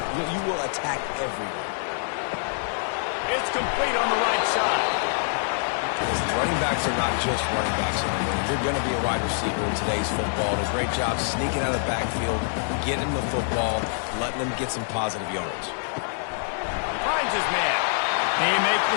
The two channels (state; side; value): silent; right; 61 dB below the other